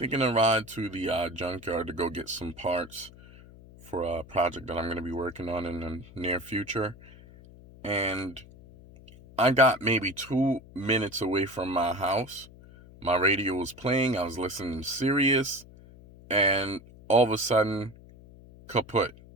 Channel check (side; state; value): left; noise; hum, 21 dB below the sound